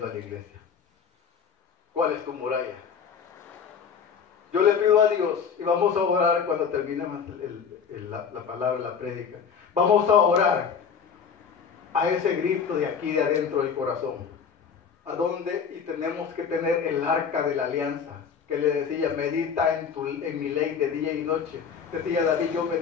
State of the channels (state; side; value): quieter; right; 6.7 dB